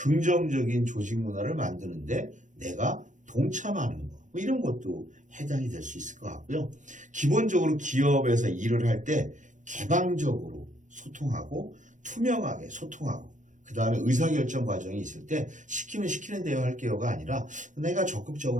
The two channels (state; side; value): late; left; 0.36 ms